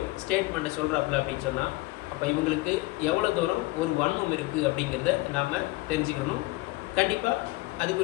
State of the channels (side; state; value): right; quieter; 21.0 dB